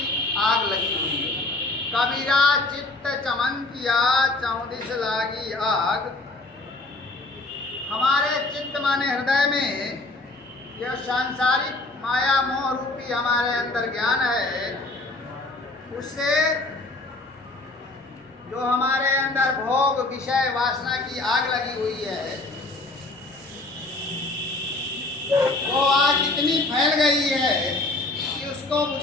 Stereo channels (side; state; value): right; quieter; 3.0 dB